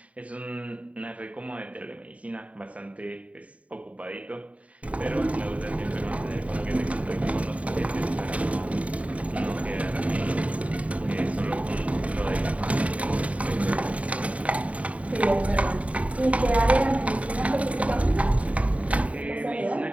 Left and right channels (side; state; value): left; late; 0.067 ms